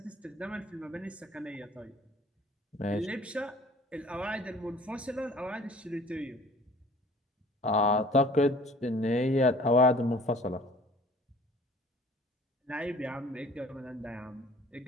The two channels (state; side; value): normal; both; correlation 0.51